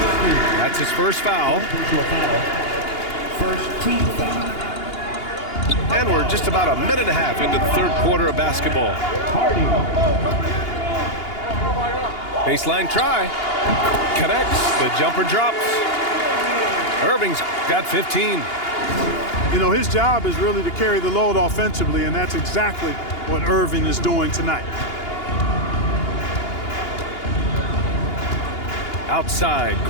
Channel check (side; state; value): right; late; 2.8 ms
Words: That's his first foul. First team foul. And we're just about a minute and a half into the third quarter of basketball. Baseline try. Connects. The jumper drops. Irving's got 15. You know, his job is really to carry the load offensively, and that's exactly what Irving is doing tonight. Outside,